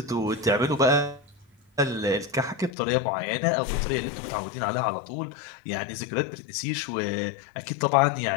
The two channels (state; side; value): drops out; right; at 2.7 s